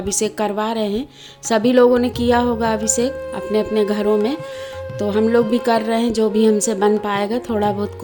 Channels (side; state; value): both; identical; correlation 1.00